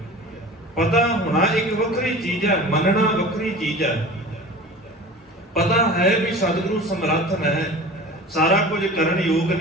ਪਤਾ ਹੋਣਾ ਇੱਕ ਵੱਖਰੀ ਚੀਜ਼ ਹੈ, ਮੰਨਣਾ ਵੱਖਰੀ ਚੀਜ਼ ਹੈ। ਪਤਾ ਹੈ ਵੀ ਸਤਿਗੁਰੂ ਸਮਰੱਥ ਹੈ, ਸਾਰਾ ਕੁਝ ਕਰਨ ਯੋਗ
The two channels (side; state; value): both; normal; correlation 0.38